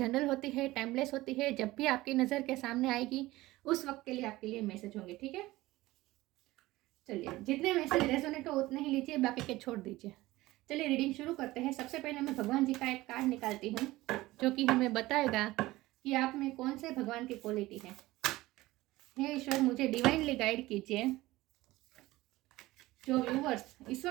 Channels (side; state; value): left; quieter; 18.4 dB